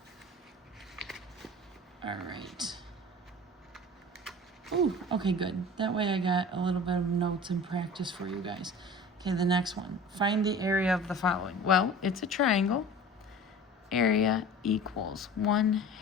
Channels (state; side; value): normal; both; correlation 0.39